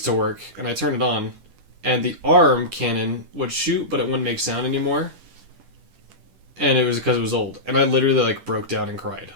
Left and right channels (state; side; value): late; left; 10 ms